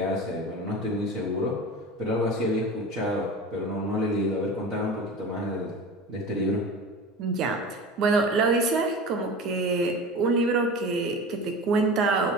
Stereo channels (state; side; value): normal; both; correlation 0.33